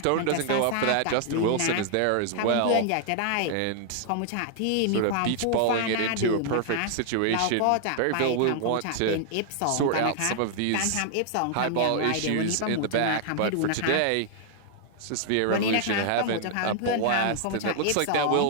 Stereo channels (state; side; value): different; both; correlation 0.00